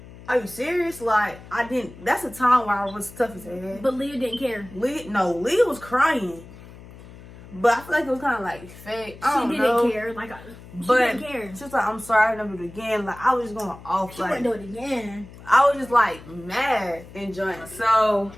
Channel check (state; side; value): noise; left; hum, 18 dB below the sound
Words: are you serious? Like, that's a time where I was tough as hell. But Leah didn't care. Leah was crying. But I feel like it was kind of like fake. I She don't didn't know. care. Like, she But didn't care. she was like, I'm sorry, I never do it again. Like, I was just going off. She Like, wouldn't do it again. I was just like mad and joint. So